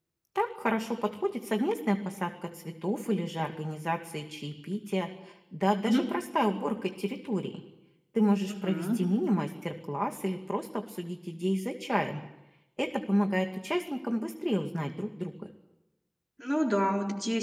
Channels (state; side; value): identical; both; correlation 1.00